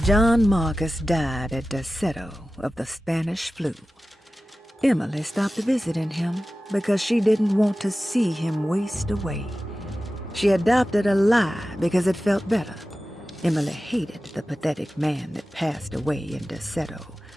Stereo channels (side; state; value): both; normal; correlation 0.95